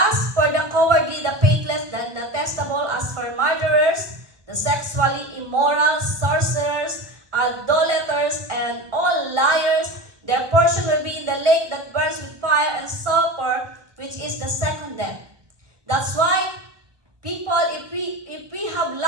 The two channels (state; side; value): late; left; 1.3 ms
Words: for the cowardly, the faithless, the detestable, as for murderers, the sexually immoral, sorcerers, idolaters, and all liars, their portion will be in the lake that burns with fire and sulfur, which is the second death. That's why people, if we have